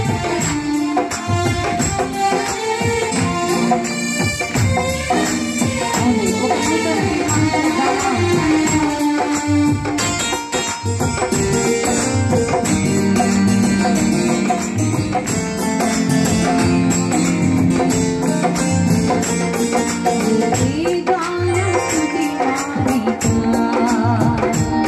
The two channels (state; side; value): identical; both; correlation 1.00